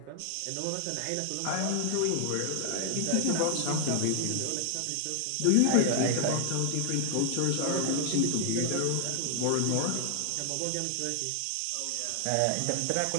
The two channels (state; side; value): different; both; correlation 0.00